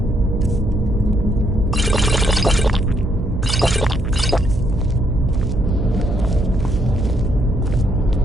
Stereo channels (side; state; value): right; noise; hum, 5 dB below the sound